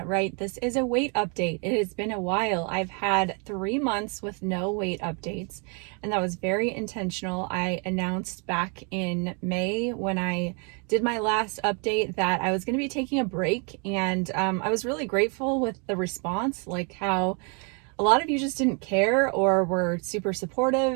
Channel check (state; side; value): quieter; left; 36.2 dB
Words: right. This is a weight update. It has been a while. I've had 3 months with no weight updates, and that was very intentional. I announced back in May when I did my last update that I was going to be taking a break, and I was really grateful with the response, like how a lot of you just didn't care or were super